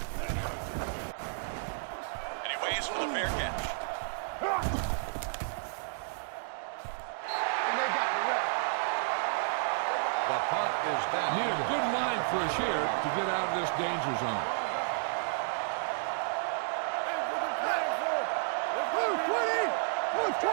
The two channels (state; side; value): silent; left; digital silence